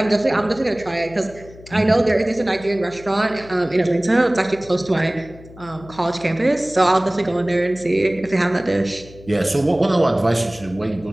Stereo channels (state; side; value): noise; left; hum, 20 dB below the sound